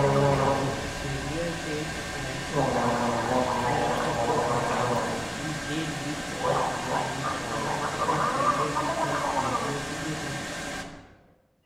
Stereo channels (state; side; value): identical; both; correlation 1.00